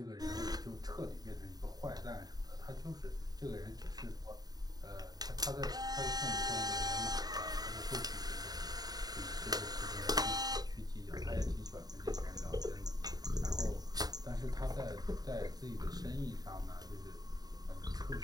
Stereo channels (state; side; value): late; left; 0.19 ms